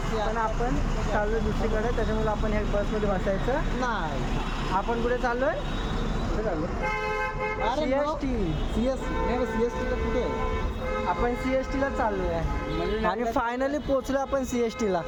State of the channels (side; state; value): both; identical; correlation 1.00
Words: आपण चाललो दुसरीकडे, त्याच्यामुळे आपण ह्या बसमध्ये बसायचं नाही. आपण कुठे चाललोय. CST ला कुठे आहे. आपण CST ला चाललोय आणि फायनली पोहोचलो आपण CST ला.